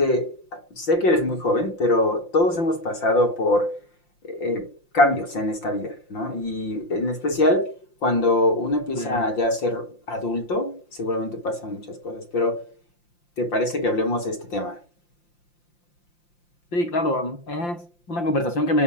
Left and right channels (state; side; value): late; right; 5.8 ms